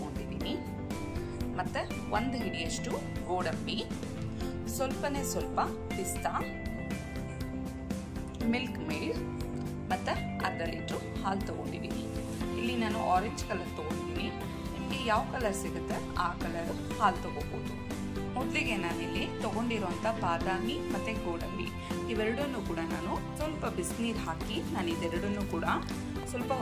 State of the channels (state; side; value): identical; both; correlation 1.00